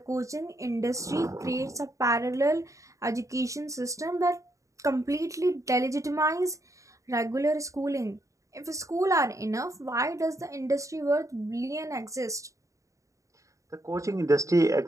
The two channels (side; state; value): left; late; 0.15 ms